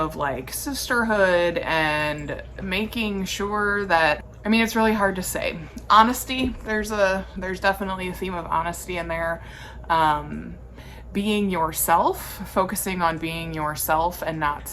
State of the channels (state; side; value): identical; both; correlation 1.00